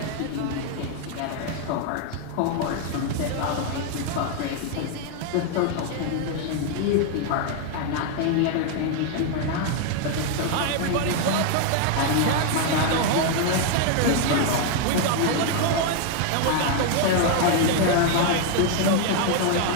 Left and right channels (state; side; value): different; both; correlation 0.01